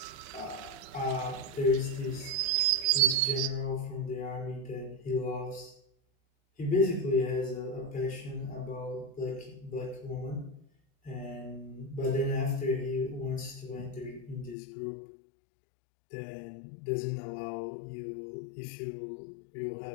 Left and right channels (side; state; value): right; drops out; at 14.6 s